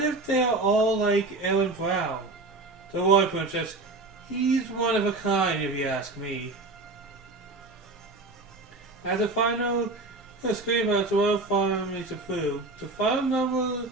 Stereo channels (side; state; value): left; quieter; 3.1 dB